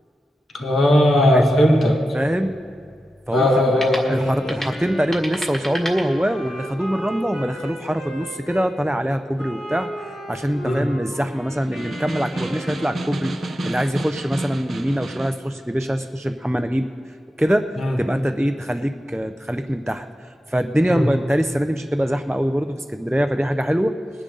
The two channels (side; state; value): both; normal; correlation 0.91